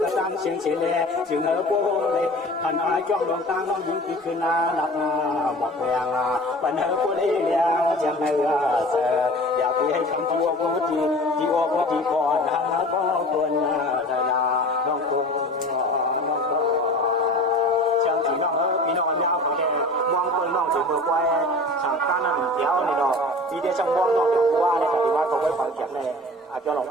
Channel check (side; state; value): both; normal; correlation 0.40